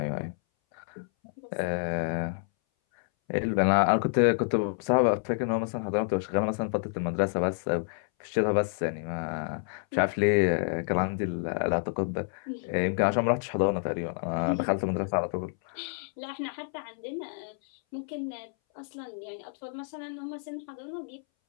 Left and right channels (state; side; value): silent; right; 59 dB below the other